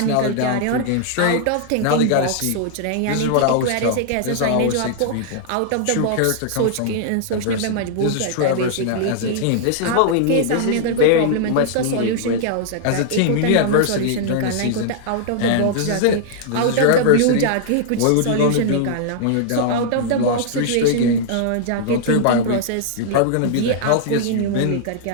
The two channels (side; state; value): both; different; correlation -0.01